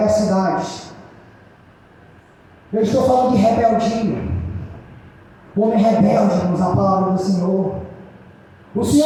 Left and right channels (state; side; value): identical; both; correlation 1.00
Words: Eu estou falando de rebeldia. O homem rebelde, irmãos, a palavra do Senhor. O